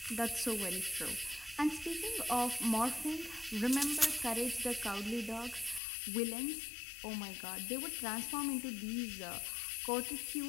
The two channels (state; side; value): drops out; right; at 5.8 s